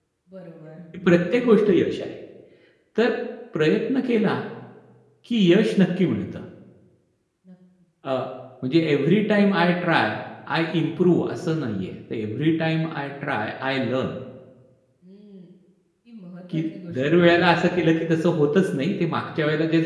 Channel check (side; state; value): both; identical; correlation 1.00